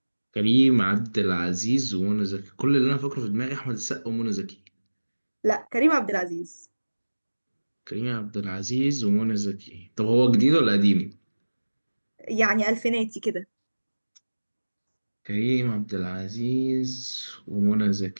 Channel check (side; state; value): both; inverted; correlation -1.00